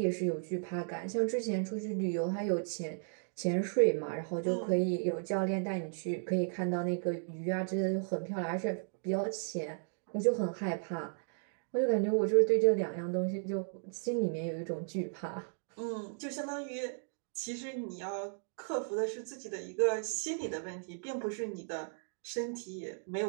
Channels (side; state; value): left; silent; digital silence